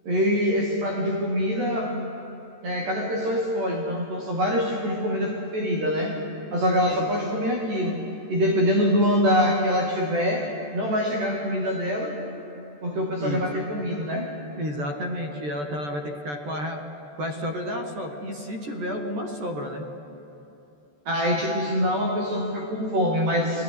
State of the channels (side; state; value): left; late; 14 ms